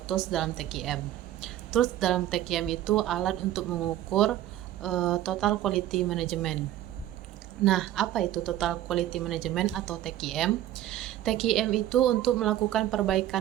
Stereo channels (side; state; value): left; quieter; 13.0 dB